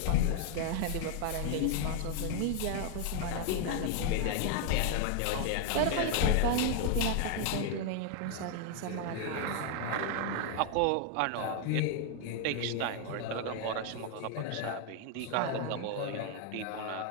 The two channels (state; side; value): different; both; correlation 0.00